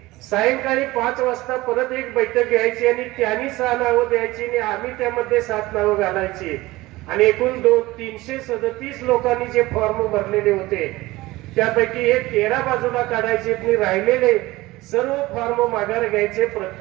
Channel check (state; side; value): quieter; left; 19.3 dB